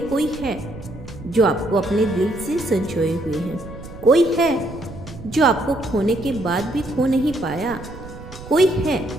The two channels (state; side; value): noise; right; rumble, 15 dB below the sound